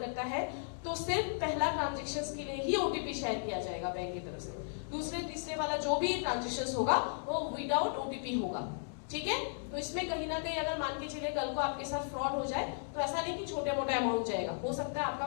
है तो सिर्फ पहला ट्रांजैक्शंस के लिए ही ओटीपी शेयर किया जाएगा बैंक की तरफ से। दूसरे तीसरे वाला जो भी ट्रांजैक्शंस होगा वो विदाउट ओटीपी होगा। ठीक है, तो इसमें कहीं ना कहीं अगर मान के चलिए कल को आपके साथ फ्रॉड हो जाए तो ऐसा नहीं कि छोटे मोटे अमाउंट जाएगा, हो सकता है आपका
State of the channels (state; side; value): silent; right; digital silence